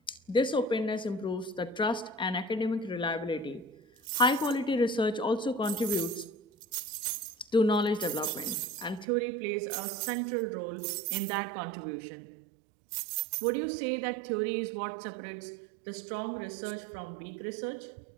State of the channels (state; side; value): drops out; left; at 9.1 s